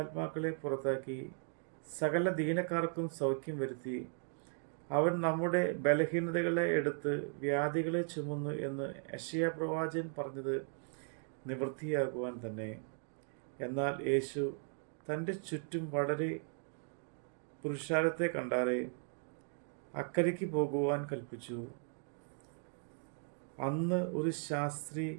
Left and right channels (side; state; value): left; silent; 53 dB below the other